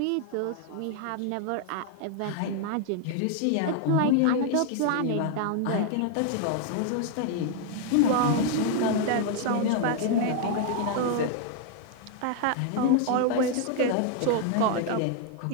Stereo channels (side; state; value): both; different; correlation 0.00